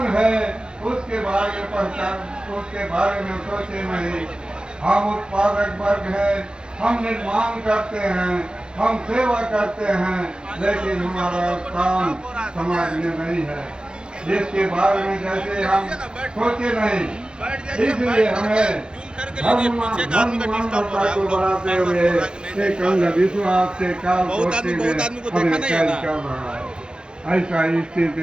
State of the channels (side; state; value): left; late; 0.049 ms